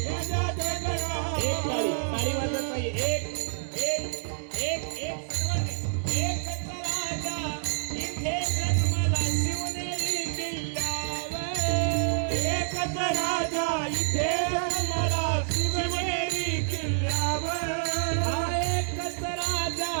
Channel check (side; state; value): left; silent; 57 dB below the other